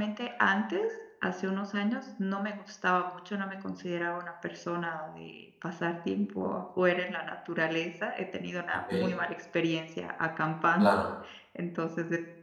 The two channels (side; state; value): both; identical; correlation 1.00